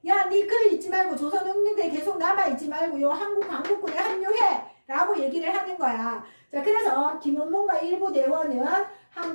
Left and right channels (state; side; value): inverted; both; correlation -1.00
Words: 야, 니 그 있지 말고 조선혁명대에 계속 남아있지 말고 요 한국광복군에 합류해 라고 얘기를 하는 거야. 자, 그래서 김원봉과 일부 대원은